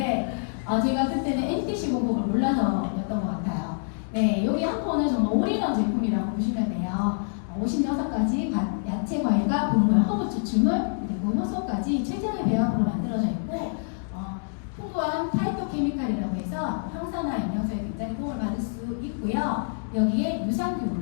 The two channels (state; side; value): silent; right; digital silence